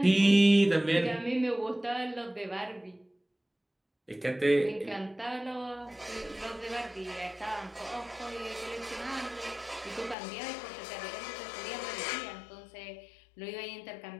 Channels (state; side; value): drops out; right; at 10.2 s